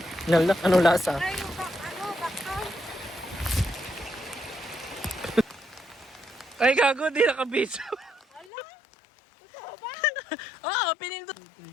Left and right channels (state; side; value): drops out; right; at 8.5 s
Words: Nalak, ano lasa? Ay, yung bakal. Ay, gago, di nakabidyo. Ala, totoo ba? Oo, pinindot.